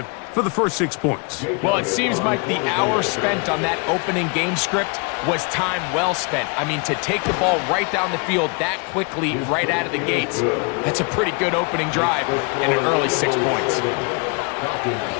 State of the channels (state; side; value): quieter; right; 33.6 dB